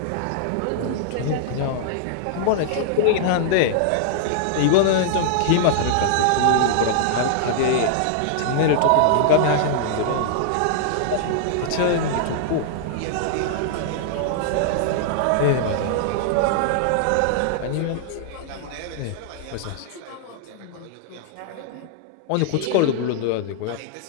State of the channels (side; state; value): both; different; correlation -0.01